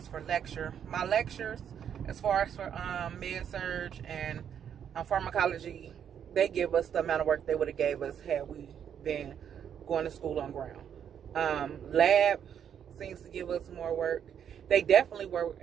for lecture. My lectures, as far as for Surg and pharmacology, they give us the amount of work they would have gave us had we been going to school on ground. Lab seems to give us more work. They definitely were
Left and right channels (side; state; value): left; quieter; 8.6 dB